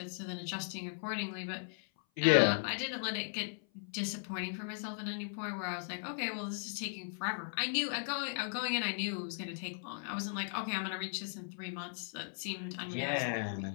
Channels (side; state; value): right; silent; 53 dB below the other